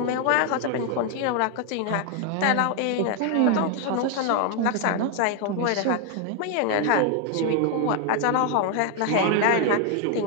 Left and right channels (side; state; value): both; different; correlation 0.00